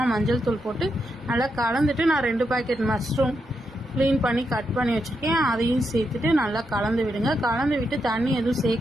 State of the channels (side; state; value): both; normal; correlation 0.83